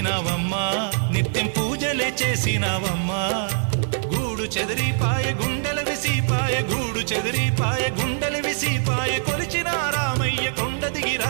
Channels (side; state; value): left; silent; digital silence